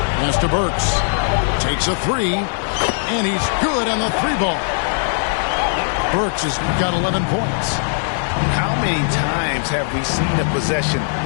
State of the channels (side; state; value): right; silent; digital silence